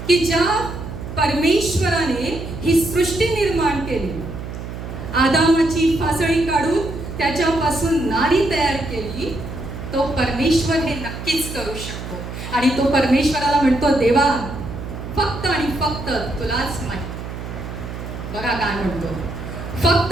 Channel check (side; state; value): right; noise; hum, 9 dB below the sound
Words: की ज्या परमेश्वराने ही सृष्टी निर्माण केली, आदामाची फासळी काढून त्याच्यापासून नारी तयार केली, तो परमेश्वर हे नक्कीच करू शकतो. आणि तो परमेश्वराला म्हणतो, देवा फक्त आणि फक्त तुलाच माहित. बघा काय म्हणतो,